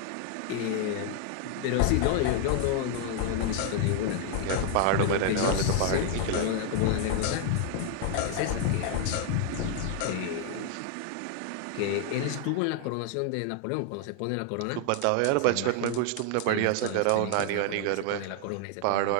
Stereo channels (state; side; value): different; both; correlation 0.00